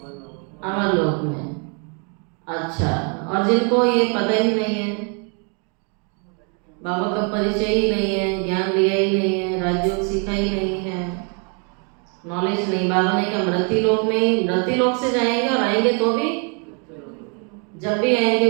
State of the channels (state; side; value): quieter; left; 38.0 dB